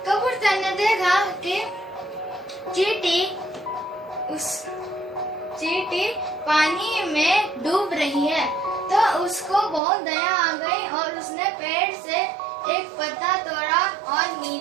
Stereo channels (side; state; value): left; drops out; at 9.8 s